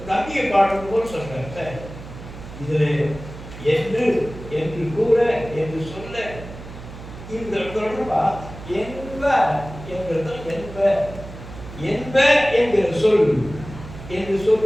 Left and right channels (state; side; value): noise; right; hum, 14 dB below the sound